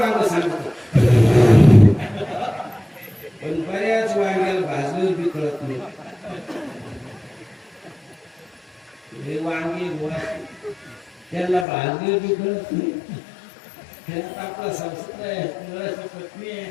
सांगतो पण बऱ्याच वांग्याला भाजलं बी कळत नाही हे वांगे त्याला भाजलं बी कळत नाही त्यात आपला संसार आहे मुलाची पत्नी आहे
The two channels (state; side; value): drops out; right; at 11.7 s